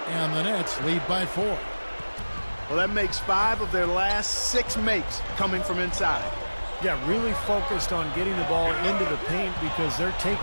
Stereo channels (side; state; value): both; inverted; correlation -1.00